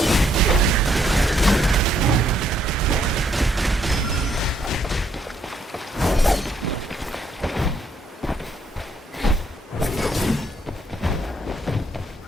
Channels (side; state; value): both; normal; correlation 0.71